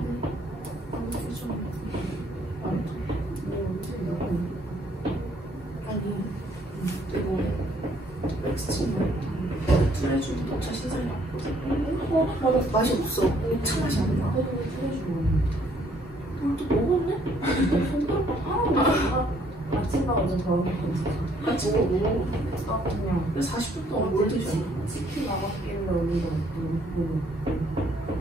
트레주도 녹차 신상이 나왔거든. 맛이 없어. 녹차 맛이 안 나. 같이 먹고. 아 그냥 40분 동안 뭘 드셨나? 치킨 나갔길래 우리가 먹고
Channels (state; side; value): normal; both; correlation 0.65